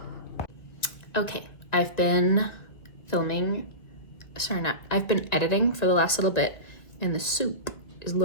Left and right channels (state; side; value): late; right; 2.0 ms